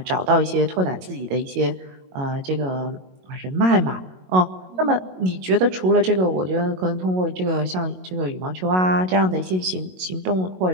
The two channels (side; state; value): left; late; 22 ms